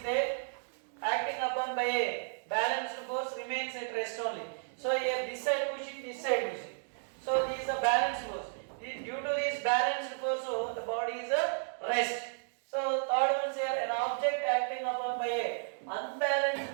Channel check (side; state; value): left; silent; digital silence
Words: there acting upon by a balanced force remains at rest only. So here this side pushing, this side pushing. So this is a balanced force. Due to this balanced force, so the body is a rest. So third one is here, an object acting upon by a unbalanced